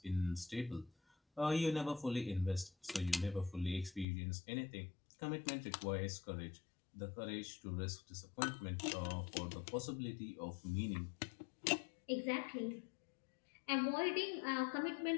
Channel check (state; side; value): drops out; right; at 4.0 s